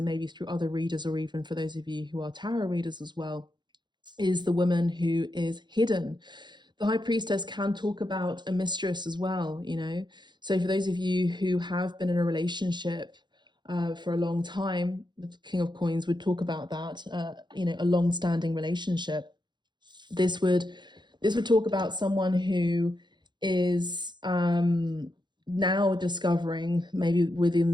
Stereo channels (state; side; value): late; left; 0.22 ms